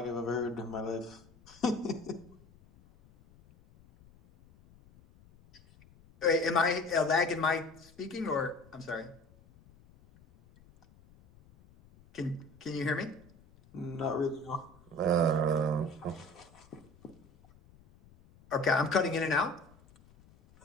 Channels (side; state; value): left; noise; rumble, 26 dB below the sound